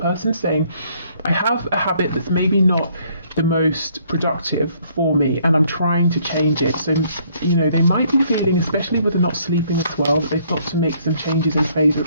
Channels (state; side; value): inverted; both; correlation -0.65